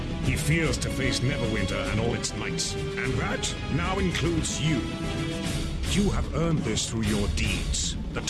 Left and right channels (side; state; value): both; identical; correlation 1.00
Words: He fears to face Neverwinter and all its knights. And that now includes you. You have earned this through your deeds. The